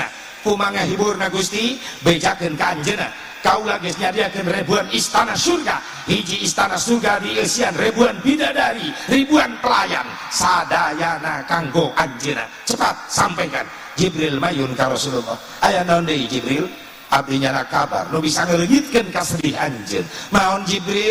Kumaha hiburna Gusti? Bejakeun ka anjeunna kaula geus nyadiakeun ribuan istana surga. Hiji istana surga dieusian ribuan bidadari, ribuan pelayan sadayana kanggo anjeunna. Cepat sampaikan. Jibril mayun ka Rasulullah, aya naon deui Jibril? Abdi nyana kabar nu bisa ngeleungitkeun ka sedih anjeun. Maon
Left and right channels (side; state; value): both; identical; correlation 1.00